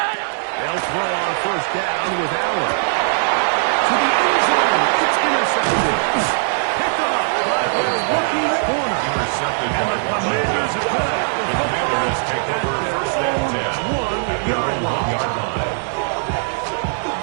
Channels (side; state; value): left; silent; 58 dB below the other